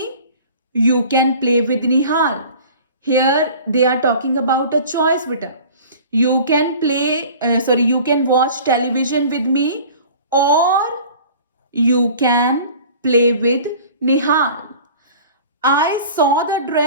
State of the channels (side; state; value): both; inverted; correlation -0.44